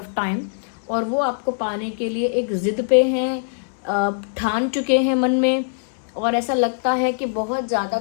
time. और वो आपको पाने के लिए एक जिद पे हैं, ठान चुके हैं मन में, और ऐसा लगता है कि बहुत ज़्यादा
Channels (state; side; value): silent; right; digital silence